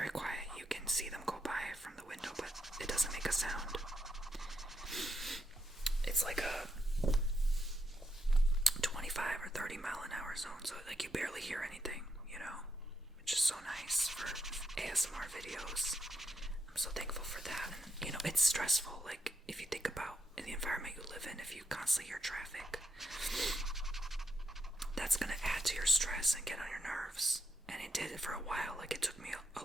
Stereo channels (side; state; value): both; normal; correlation 0.82